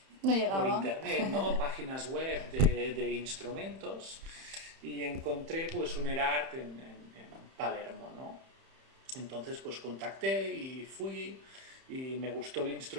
No por llegaba. internet, ¿no? Páginas web de instrumentos y encontré pues un Erard en Palermo, ¿no? Entonces pues contacté y fui y me gustó el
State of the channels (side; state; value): left; late; 31 ms